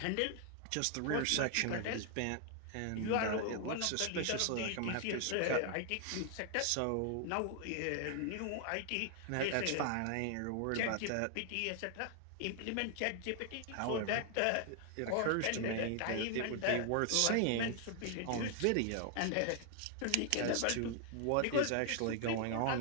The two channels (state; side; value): different; both; correlation 0.00